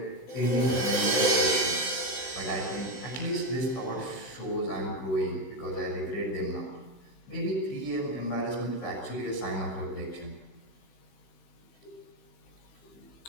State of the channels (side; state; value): right; late; 16 ms